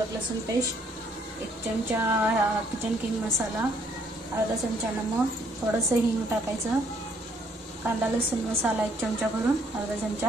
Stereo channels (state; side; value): normal; both; correlation 0.66